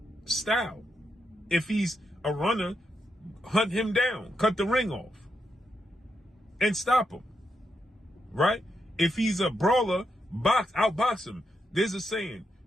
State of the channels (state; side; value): normal; both; correlation 0.83